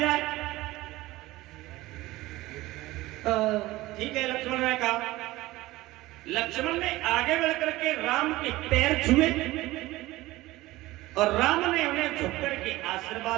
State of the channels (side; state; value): left; quieter; 18.3 dB